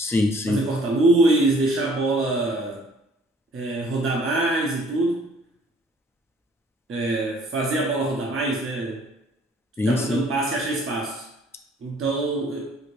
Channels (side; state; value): both; normal; correlation 0.57